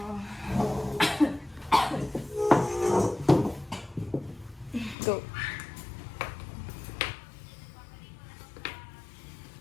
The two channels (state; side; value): drops out; right; at 5.0 s